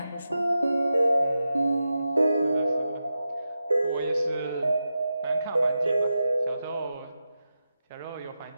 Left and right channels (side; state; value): both; inverted; correlation -0.90